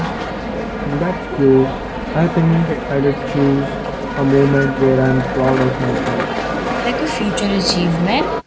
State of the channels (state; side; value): identical; both; correlation 1.00